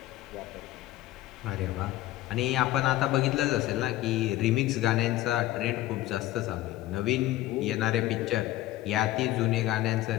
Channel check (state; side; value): quieter; right; 15.7 dB